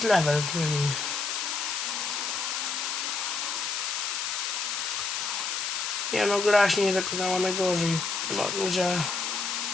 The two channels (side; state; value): left; noise; hiss, 2 dB below the sound